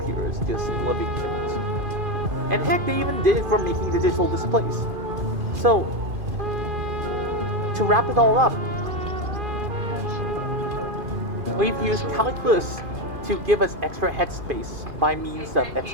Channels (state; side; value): late; left; 2.5 ms